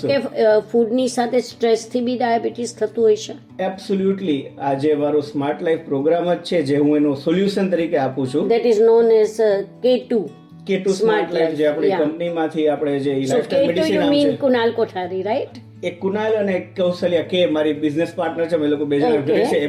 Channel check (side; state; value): both; identical; correlation 1.00